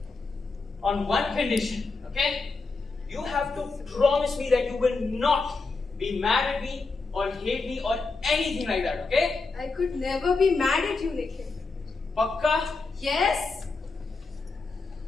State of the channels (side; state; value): right; quieter; 4.0 dB